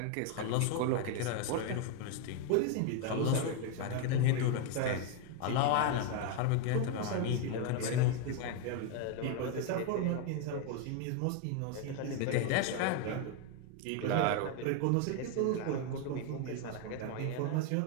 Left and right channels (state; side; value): different; both; correlation 0.01